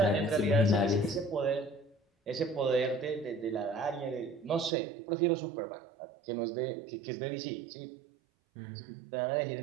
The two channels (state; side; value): drops out; left; at 4.7 s